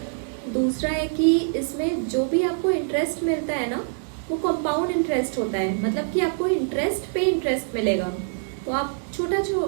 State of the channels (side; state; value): left; silent; digital silence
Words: दूसरा है कि इसमें जो भी आपको इंटरेस्ट मिलता है ना, वो कंपाउंड इंटरेस्ट होता है, मतलब कि आपको इंटरेस्ट पे इंटरेस्ट मिलेगा। तो आप